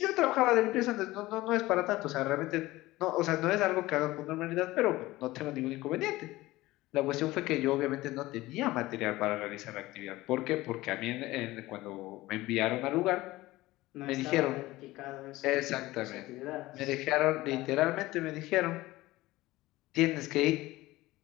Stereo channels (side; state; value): right; quieter; 18.4 dB